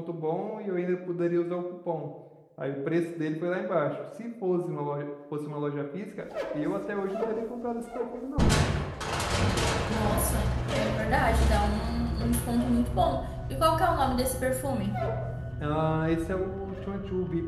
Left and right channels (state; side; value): identical; both; correlation 1.00